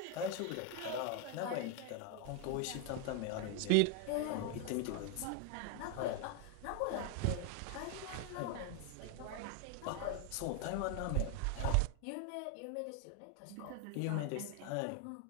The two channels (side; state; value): both; different; correlation 0.01